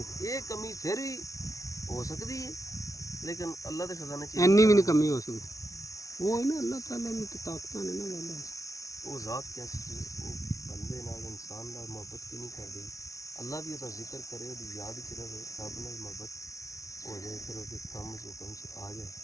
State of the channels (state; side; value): late; right; 0.16 ms